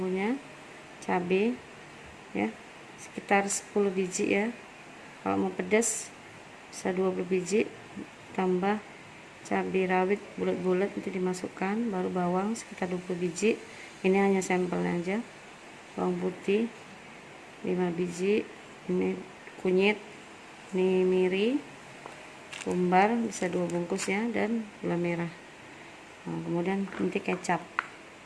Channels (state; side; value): identical; both; correlation 1.00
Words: cabai ya, sekitar 10 biji ya. Kalau mau pedas bisa 20 biji, tambah cabai rawit bulat-bulat nanti dimasukkan, baru bawang sekitar 20 biji. Ini hanya sampelnya aja. Bawang putih 5 biji, ini kunyit, ini miri, kumbar bisa 2 bungkus ya, dan gula merah. Nah, kemudian nanti kecap.